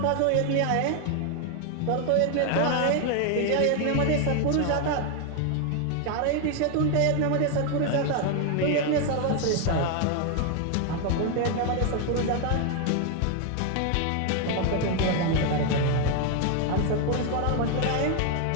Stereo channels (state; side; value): different; both; correlation 0.01